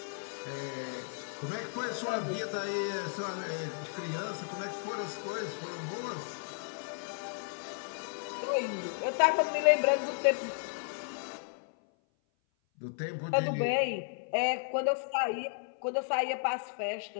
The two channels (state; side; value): silent; right; 55 dB below the other